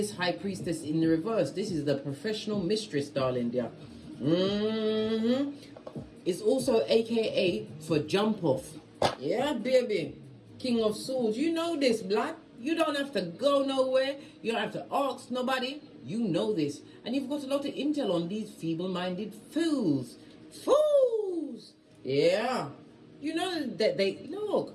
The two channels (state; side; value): identical; both; correlation 1.00